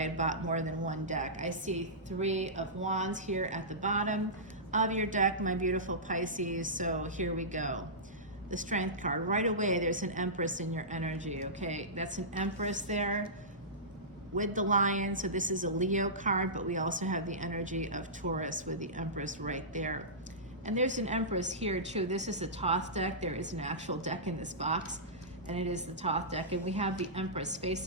bought more than one deck. I see 3 of Wands here at the bottom of your deck, my beautiful Pisces. So here we go. The Strength card. Right away, there's an Empress in your energy, okay? That's an Empress there with the Lion. So this is a Leo card, but we also have the energy of Taurus with the Empress right there. And there's an Empress here too. This is the Thoth deck. There is an actual deck in this box, and it is the Thoth deck. And we have the Empress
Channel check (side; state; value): both; normal; correlation -0.18